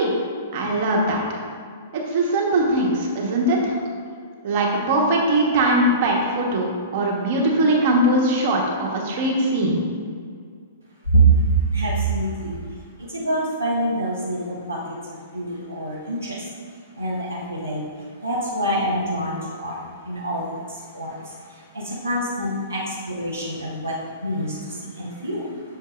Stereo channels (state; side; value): inverted; both; correlation -0.35